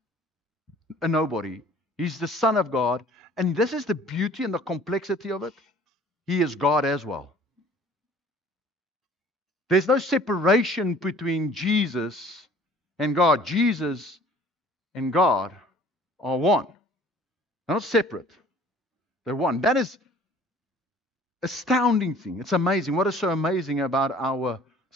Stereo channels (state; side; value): normal; both; correlation 0.52